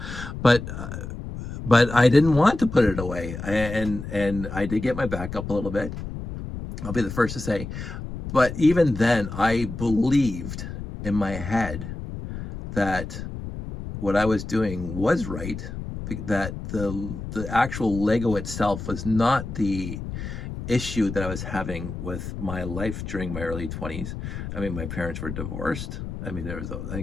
but I didn't want to put it away. And I did get my back up a little bit. I'll be the first to say, but even then I believed in my head that what I was doing was right, that the actual Lego itself was not the issue that I was having with my life during my early 20s. I mean, my parents were divorced. I mean,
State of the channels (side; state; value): left; noise; rumble, 8 dB below the sound